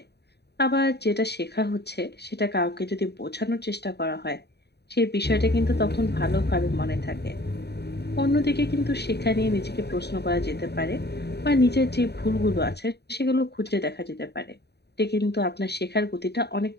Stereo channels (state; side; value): late; right; 0.48 ms